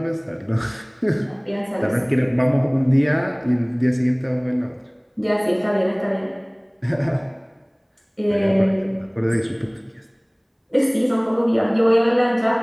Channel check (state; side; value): identical; both; correlation 1.00